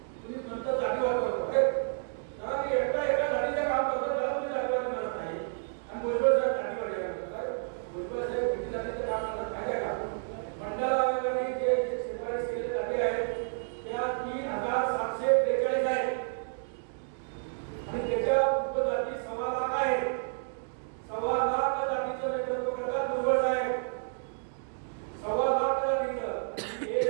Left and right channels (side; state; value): left; silent; digital silence